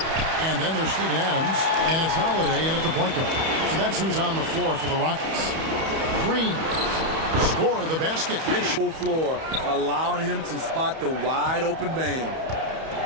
And then there's Steven Adams, and it's Holiday in at the point guard. So that's who's on the floor for the Rockets. Green, score the basket. Full floor, allowing him to spot the wide open man.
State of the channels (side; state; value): left; late; 31 ms